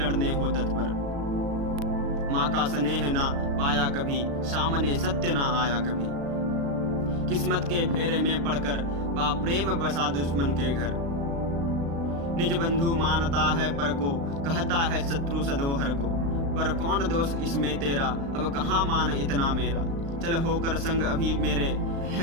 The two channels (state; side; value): late; left; 36 ms